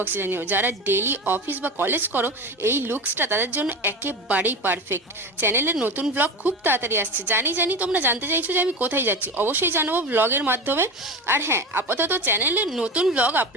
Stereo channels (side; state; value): both; normal; correlation 0.26